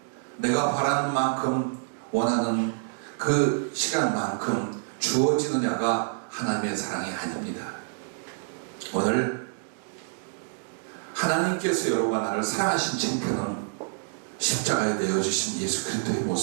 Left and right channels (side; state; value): left; silent; digital silence